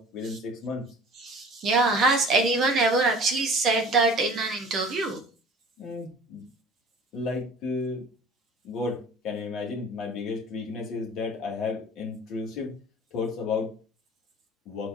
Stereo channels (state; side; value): normal; both; correlation 0.45